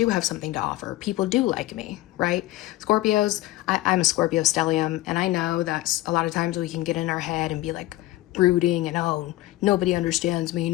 have something to offer. People do like me, right? Scorpios, I'm a Scorpio stellium, and I know that a lot of times we can get in our head and be like brooding and, oh, nobody understands me,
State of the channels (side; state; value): right; quieter; 16.9 dB